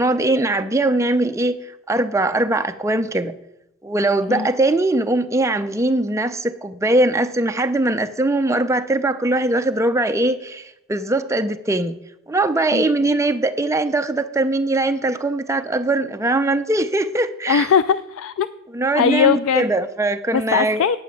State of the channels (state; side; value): normal; both; correlation 0.47